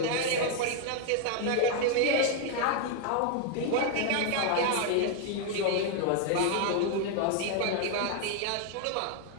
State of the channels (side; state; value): both; different; correlation 0.00